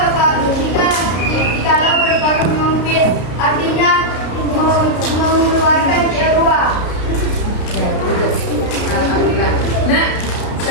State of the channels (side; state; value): right; late; 33 ms